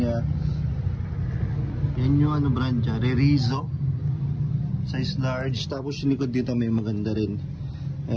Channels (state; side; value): identical; both; correlation 1.00